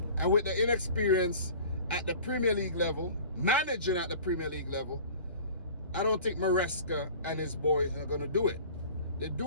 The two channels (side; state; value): both; inverted; correlation -0.44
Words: And with the inexperience at the Premier League level, managing at the Premier League level, I don't think Maresca and his boys are going to do it. They